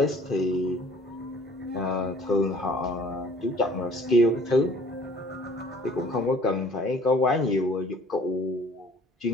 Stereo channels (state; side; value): normal; both; correlation 0.53